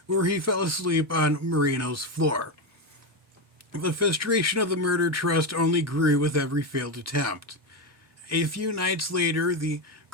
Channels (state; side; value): normal; both; correlation 0.11